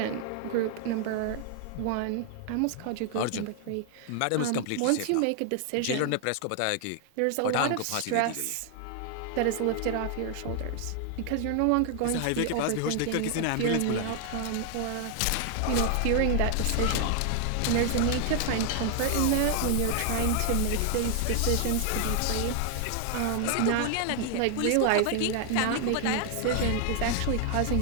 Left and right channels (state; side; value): different; both; correlation 0.00